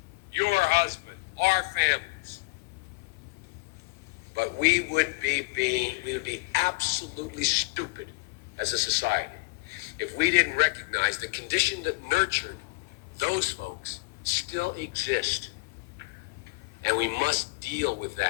your husband, our families. But we would be absolutely stupid as a society if we didn't recognize the condition that nurtured those folks still exist. And we must deal with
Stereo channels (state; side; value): quieter; right; 26.2 dB